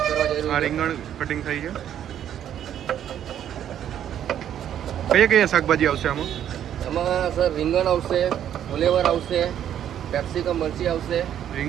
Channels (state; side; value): quieter; left; 10.2 dB